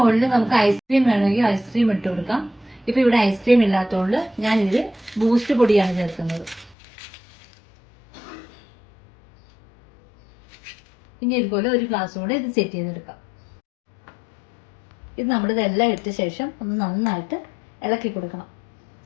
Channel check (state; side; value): drops out; right; at 6.8 s